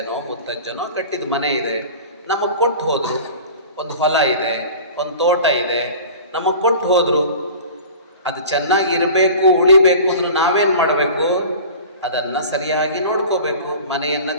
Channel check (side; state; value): both; inverted; correlation -0.39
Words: ಮುತ್ತಜ್ಜನೋ ಕಟ್ಟಿದ ಮನೆ ಇದೆ, ನಮಗೆ ಕೊಟ್ಟು ಹೋದರು. ಒಂದು ಹೊಲ ಇದೆ, ಒಂದು ತೋಟ ಇದೆ, ನಮಗೆ ಕೊಟ್ಟು ಹೋದರು. ಅದು ಚೆನ್ನಾಗಿ ಇರಬೇಕು, ಉಳಿಬೇಕು ಅಂದ್ರೆ ನಾವೇನು ಮಾಡಬೇಕು, ಅದನ್ನು ಸರಿಯಾಗಿ ನೋಡ್ಕೋಬೇಕು. ಮನೆಯನ್ನು